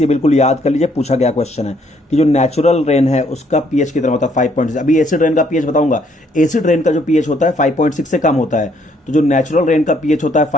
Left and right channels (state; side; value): normal; both; correlation 0.67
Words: ये बिल्कुल याद कर लीजिए, पूछा गया क्वेश्चन है कि जो नेचुरल रेन है उसका पीएच कितना होता है, 5.6। अभी एसिड रेन का पीएच बताऊंगा। एसिड रेन का जो पीएच होता है 5.6 से कम होता है, तो जो नेचुरल रेन का पीएच होता है